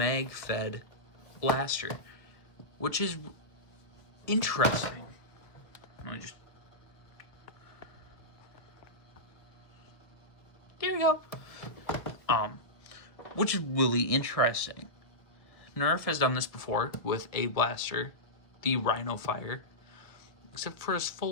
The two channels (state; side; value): late; right; 1.5 ms